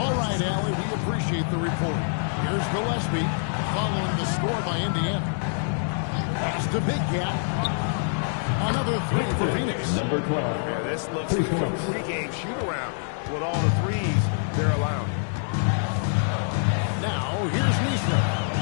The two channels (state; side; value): silent; right; 61 dB below the other